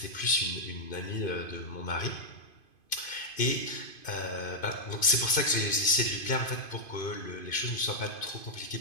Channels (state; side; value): late; right; 2.5 ms